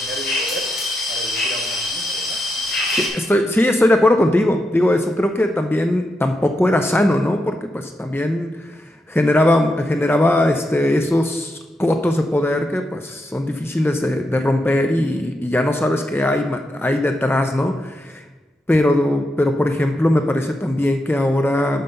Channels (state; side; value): normal; both; correlation 0.85